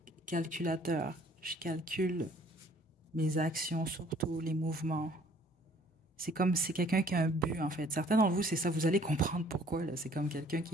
calculateur. Je calcule mes actions, surtout les mouvements. C'est comme, c'est quelqu'un qui a un but, en fait. Certains d'entre vous, c'est ça, vous allez comprendre pourquoi, là. C'est comme quelqu'un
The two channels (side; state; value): both; normal; correlation 0.57